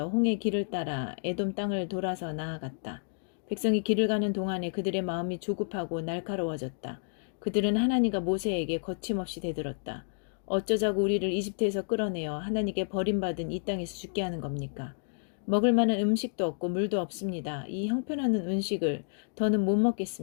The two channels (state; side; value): silent; right; digital silence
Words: 홍해 길을 따라 에돔 땅을 돌아서 나아갔다. 백성이 길을 가는 동안에 그들의 마음이 조급하고 날카로워졌다. 그들은 하나님과 모세에게 거침없이 대들었다. 어쩌자고 우리를 이집트에서 끌어내어 하나님께 버림받은 이 땅에서 죽게 하는 겁니까? 먹을 만한 음식도 없고 물도 없습니다. 이 형편없는 음식을 더는 못